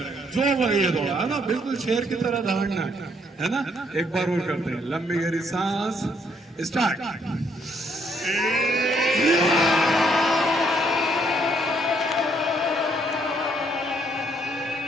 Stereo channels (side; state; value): both; normal; correlation 0.70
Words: जो लगे थोड़ा, है ना, बिल्कुल शेर की तरह दहाड़ना है ना। एक बार और करते हैं, लंबी गहरी सांस। स्टार्ट।